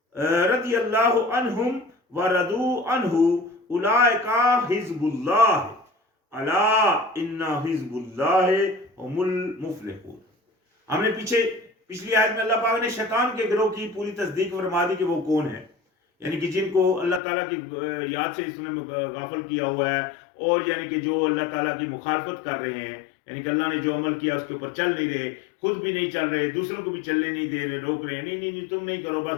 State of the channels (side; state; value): right; drops out; at 17.2 s